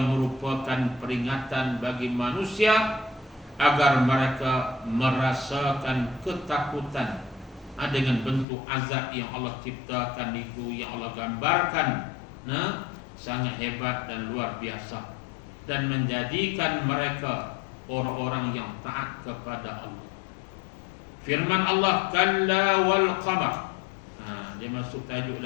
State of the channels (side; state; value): right; drops out; at 8.5 s